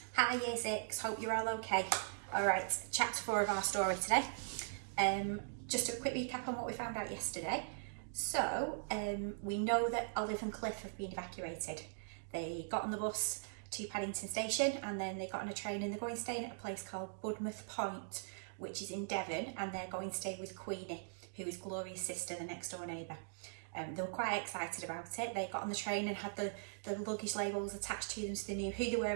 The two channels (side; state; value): left; silent; digital silence